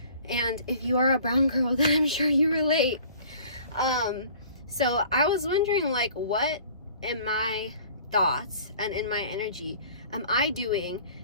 And if you are a brown girl, then I'm sure you relate. So I was wondering, what in my thoughts and in my energy am I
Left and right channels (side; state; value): both; inverted; correlation -0.50